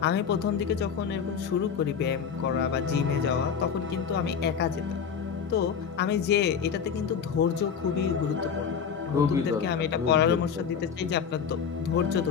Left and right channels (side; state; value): right; quieter; 7.0 dB